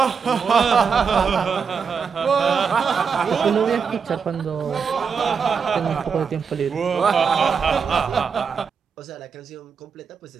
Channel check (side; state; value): left; quieter; 6.0 dB